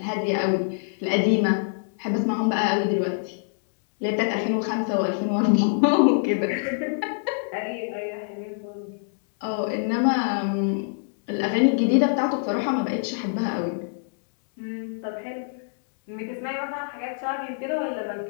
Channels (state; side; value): silent; right; digital silence